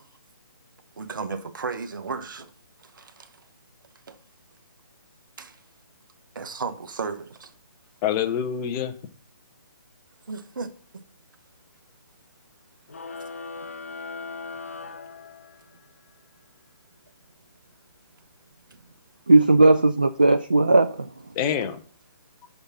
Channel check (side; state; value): both; inverted; correlation -0.81